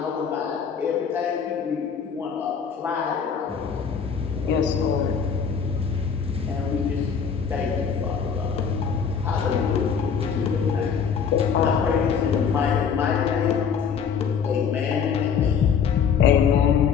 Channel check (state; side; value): quieter; right; 6.7 dB